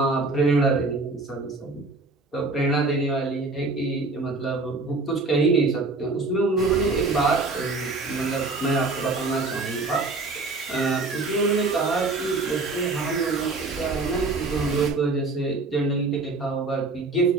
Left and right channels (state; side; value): quieter; left; 3.5 dB